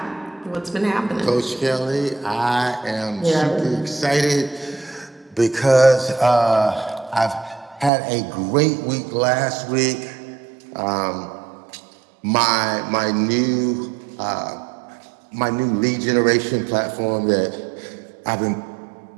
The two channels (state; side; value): drops out; left; at 7.9 s